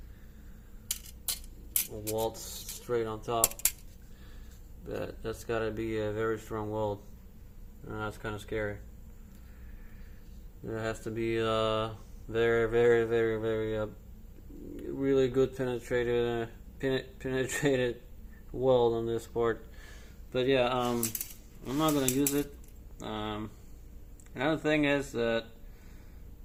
Weld straight on top. But that's got to be a very strong weld, and that's kind of scary. There has to be very, very, very, very really good penetrated weld on this part. But yeah, I'm not gonna use it. Another thing is that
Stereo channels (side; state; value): both; identical; correlation 1.00